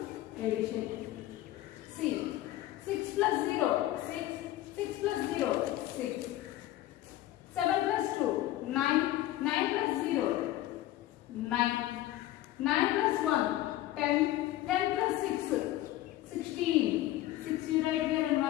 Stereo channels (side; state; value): right; quieter; 14.9 dB